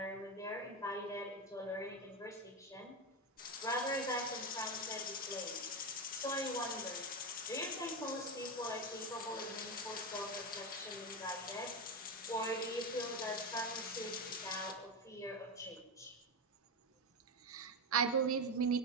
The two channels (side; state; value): both; normal; correlation 0.14